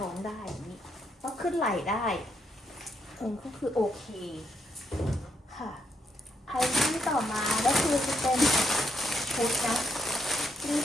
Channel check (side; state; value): both; normal; correlation 0.75